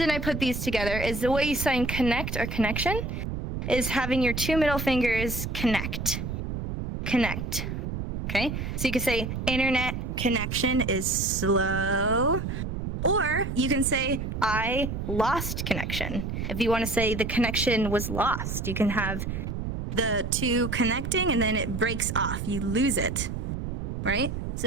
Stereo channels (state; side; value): noise; right; rumble, 4 dB below the sound